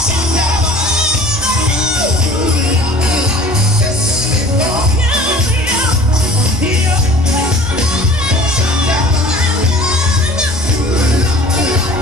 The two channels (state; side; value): normal; both; correlation 0.46